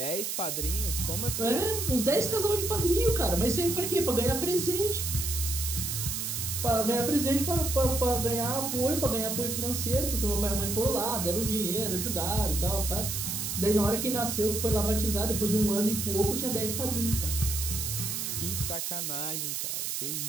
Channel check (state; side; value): noise; right; hiss, 2 dB below the sound